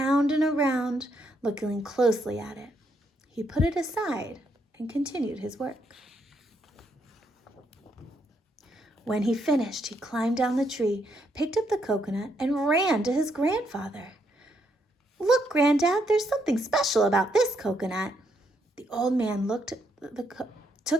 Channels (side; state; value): both; normal; correlation 0.75